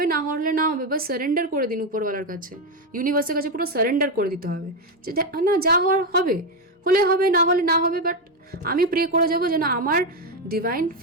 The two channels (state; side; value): normal; both; correlation 0.08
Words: না হওয়ার হলে না হবে, বাস সারেন্ডার করে দিন উপরওয়ালার কাছে, ইউনিভার্সের কাছে পুরো সারেন্ডার করে দিতে হবে যে না, যা হওয়ার হবে, হলে হবে, না হলে না হবে। বাট আমি প্রে করে যাবো যেন আমার